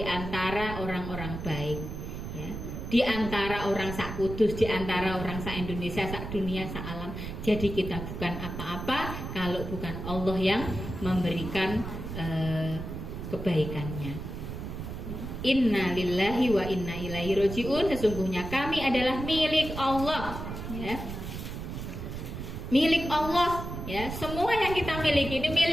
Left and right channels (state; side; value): noise; right; rumble, 7 dB below the sound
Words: antara orang-orang baik, ya. Di antara orang sak kudus, di antara orang sak Indonesia, sak dunia, sak alam. Jadi kita bukan apa-apa kalau bukan Allah yang memberikan kebaikannya. Inna lillahi wa inna ilaihi raji'un. Sesungguhnya kami adalah milik Allah, ya. Milik Allah, ya. Semua yang kita miliki ini